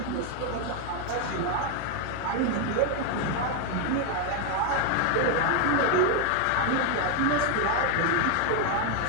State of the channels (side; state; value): both; different; correlation 0.01